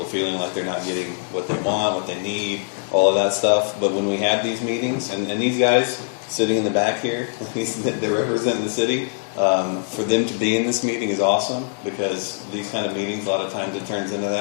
feeling like they're not getting what they want, what they need, all of that stuff. But when we have these meetings, and these guys sitting in the back here, they're representing the city, for them to be in this meeting is awesome, because these kind of meetings, a lot of times it turns into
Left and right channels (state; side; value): silent; right; 62 dB below the other